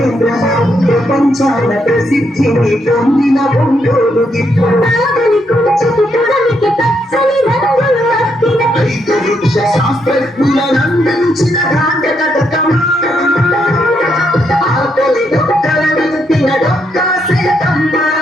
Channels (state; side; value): normal; both; correlation 0.77